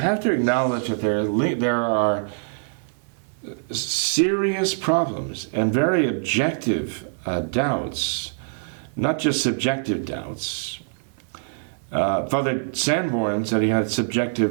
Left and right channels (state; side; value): silent; left; 63 dB below the other